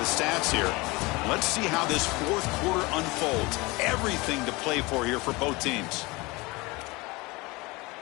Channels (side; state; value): right; quieter; 23.9 dB